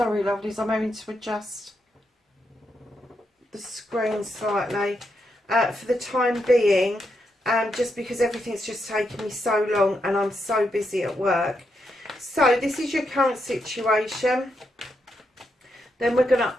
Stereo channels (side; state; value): both; normal; correlation 0.82